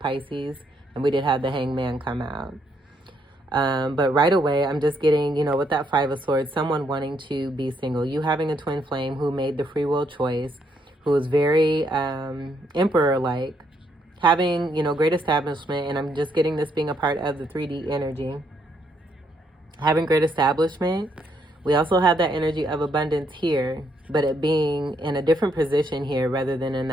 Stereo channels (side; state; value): both; normal; correlation 0.73